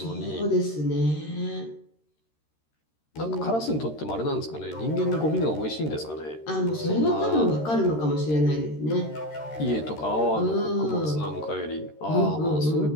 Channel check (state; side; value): late; right; 13 ms